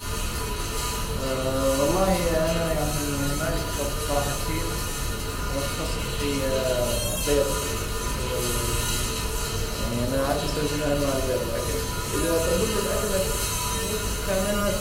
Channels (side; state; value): both; identical; correlation 1.00